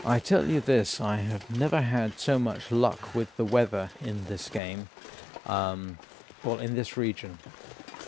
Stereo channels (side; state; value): right; drops out; at 4.6 s